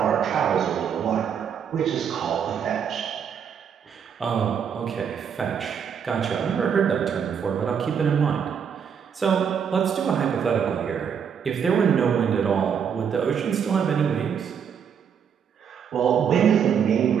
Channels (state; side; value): quieter; left; 7.5 dB